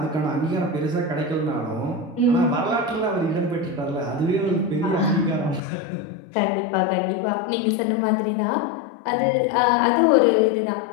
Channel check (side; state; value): right; drops out; at 5.6 s